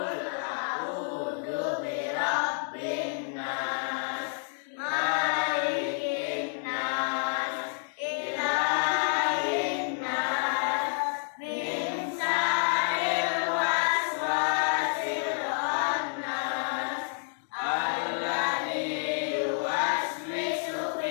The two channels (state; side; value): silent; right; 58 dB below the other